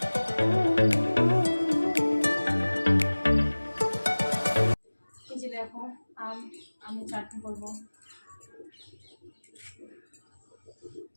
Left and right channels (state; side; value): inverted; both; correlation -1.00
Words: এই যে দেখো, আমি চাটনি করবো।